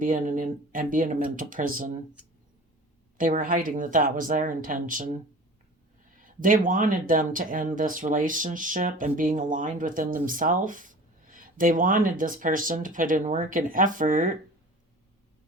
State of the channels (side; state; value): both; normal; correlation 0.40